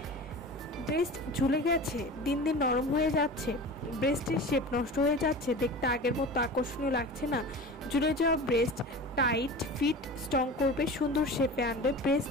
ব্রেস্ট ঝুলে গেছে, দিন দিন নরম হয়ে যাচ্ছে, ব্রেস্টের শেপ নষ্ট হয়ে যাচ্ছে, দেখতে আগের মতো আকর্ষণীয় লাগছে না, ঝুলে যাওয়া ব্রেস্ট টাইট ফিট স্ট্রং করবে, সুন্দর শেপে আনবে,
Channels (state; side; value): normal; both; correlation 0.34